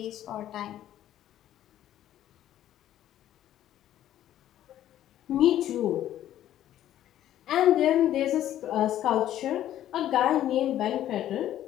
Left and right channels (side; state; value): right; quieter; 12.1 dB